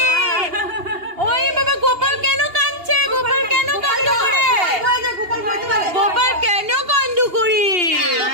ওই বাবা গোপাল কেন কাঁদছে? গোপাল কেন কান্দ করে? গোপাল কেন কান্দ করে?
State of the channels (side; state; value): left; late; 2.8 ms